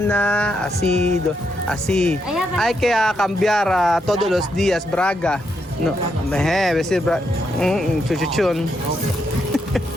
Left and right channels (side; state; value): both; normal; correlation 0.80